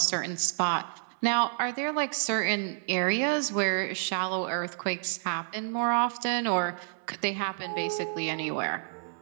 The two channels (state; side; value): silent; left; 58 dB below the other